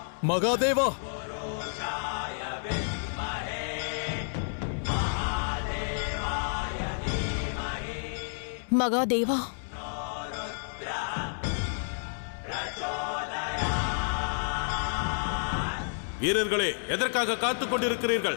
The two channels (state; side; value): silent; right; 58 dB below the other